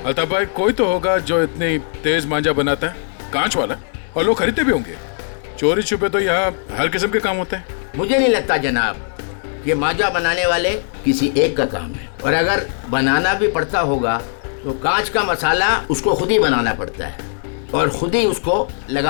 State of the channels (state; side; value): silent; right; 57 dB below the other